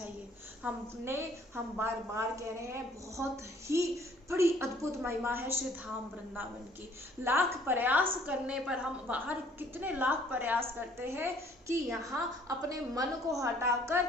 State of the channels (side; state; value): both; normal; correlation 0.59